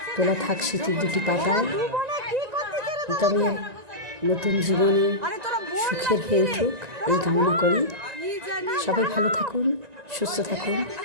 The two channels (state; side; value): late; left; 1.9 ms